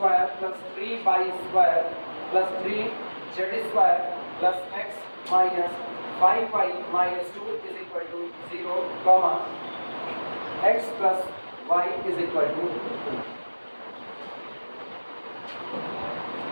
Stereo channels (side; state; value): both; inverted; correlation -1.00